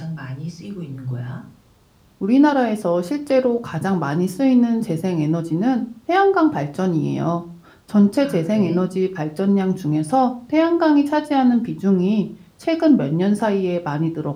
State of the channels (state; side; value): identical; both; correlation 1.00